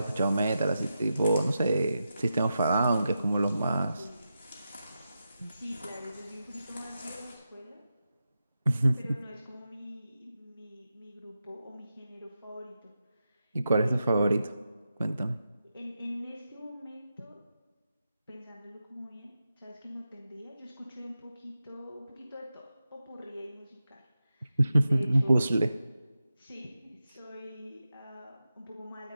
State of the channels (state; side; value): inverted; both; correlation -0.89